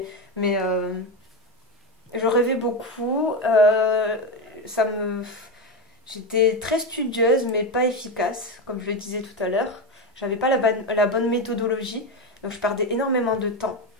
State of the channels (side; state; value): both; normal; correlation 0.14